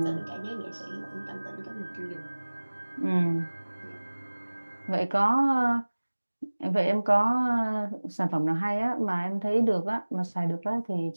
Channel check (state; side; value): inverted; both; correlation -1.00